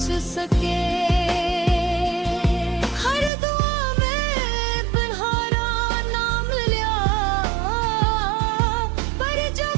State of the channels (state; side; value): drops out; left; at 3.3 s